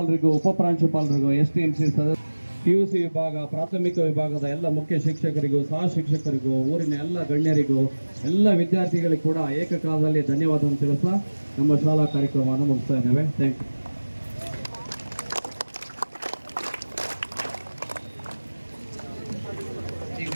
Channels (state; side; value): inverted; both; correlation -1.00